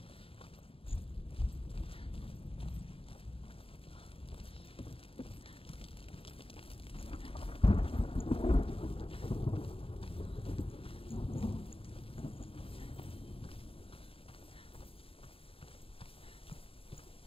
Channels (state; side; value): late; right; 0.27 ms